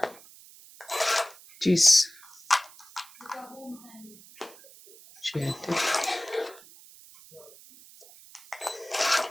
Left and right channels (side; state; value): right; noise; hiss, 22 dB below the sound